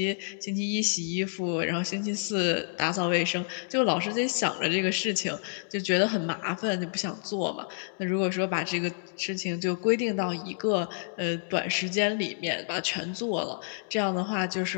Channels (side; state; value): right; silent; digital silence